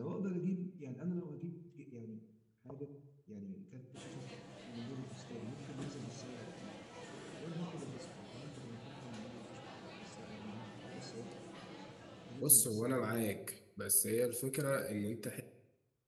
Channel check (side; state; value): both; identical; correlation 1.00